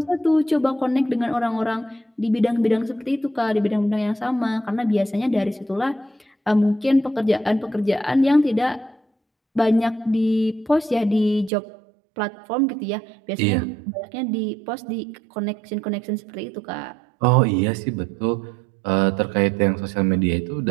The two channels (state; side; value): drops out; left; at 11.5 s